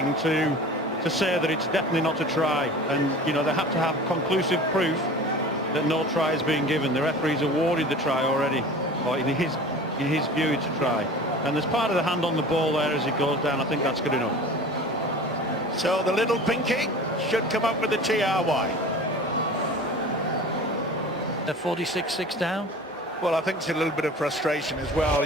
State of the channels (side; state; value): both; normal; correlation 0.39